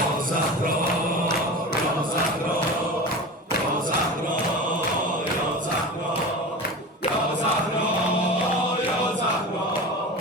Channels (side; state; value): both; normal; correlation 0.30